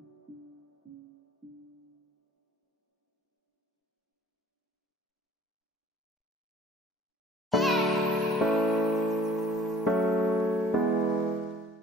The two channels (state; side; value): normal; both; correlation 0.52